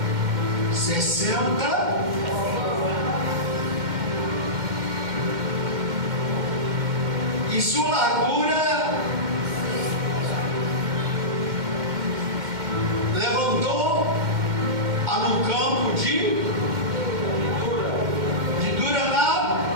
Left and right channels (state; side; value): late; left; 2.1 ms